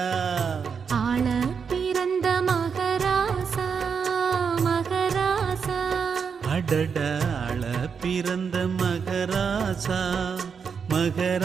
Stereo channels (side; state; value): left; quieter; 6.2 dB